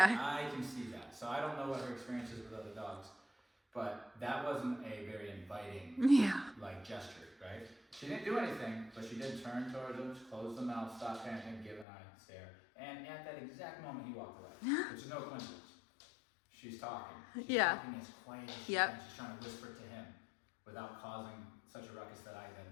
I can see that. So I don't know what her experience is with other dogs, but that wasn't a very inviting gesture, right? She didn't do anything, but she did turn towards him, close the mouth, stop panting, give an eye stare. And at that exact moment, he walked away, which is no coincidence. She's talking. She's talking as quiet as she can. She's trying to whisper to him without causing such a ruckus that I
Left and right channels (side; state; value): right; drops out; at 11.9 s